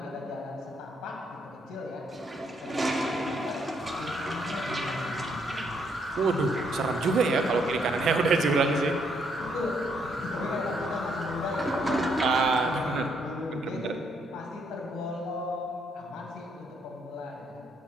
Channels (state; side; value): normal; both; correlation 0.72